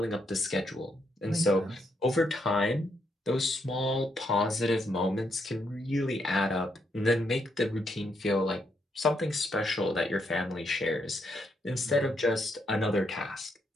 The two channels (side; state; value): both; normal; correlation 0.77